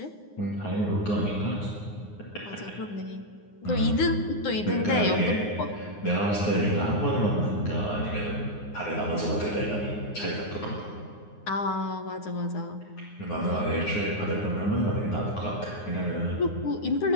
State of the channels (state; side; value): late; right; 9.7 ms